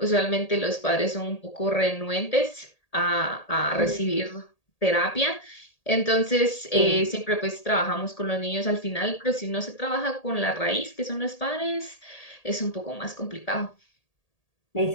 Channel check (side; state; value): right; late; 1.8 ms